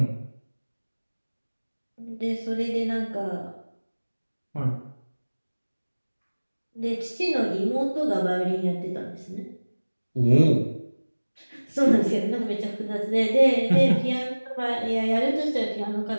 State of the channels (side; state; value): both; inverted; correlation -1.00